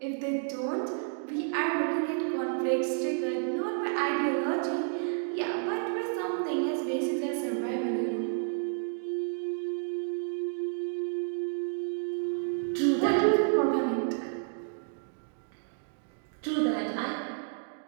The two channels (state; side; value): silent; left; digital silence